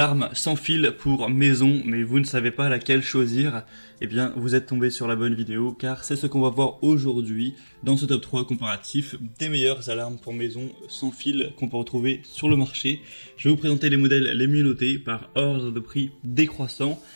sans fil pour maison, mais vous ne savez pas laquelle choisir. Eh bien, vous êtes tombé sur la bonne vidéo, car c'est ce qu'on va voir aujourd'hui dans ce top 3 comparatif des meilleures alarmes pour maison sans fil qu'on peut retrouver sur le marché. Je vais vous présenter les modèles les mieux notés par ordre de prix décroissant.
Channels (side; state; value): both; inverted; correlation -1.00